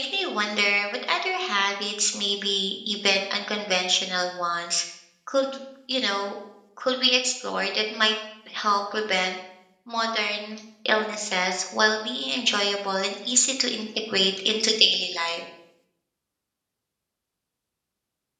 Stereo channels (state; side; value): identical; both; correlation 1.00